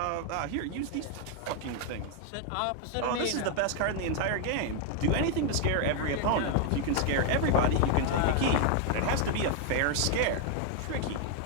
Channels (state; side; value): different; both; correlation 0.00